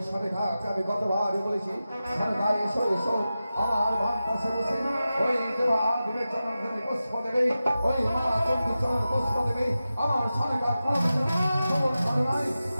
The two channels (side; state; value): both; inverted; correlation -0.93